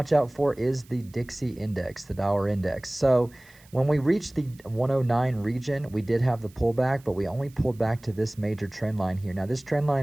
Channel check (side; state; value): right; noise; hiss, 27 dB below the sound